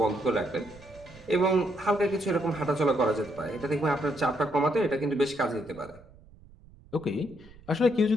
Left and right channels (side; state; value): right; noise; rumble, 24 dB below the sound